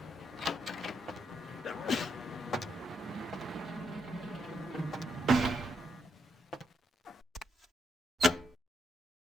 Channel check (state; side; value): normal; both; correlation 0.77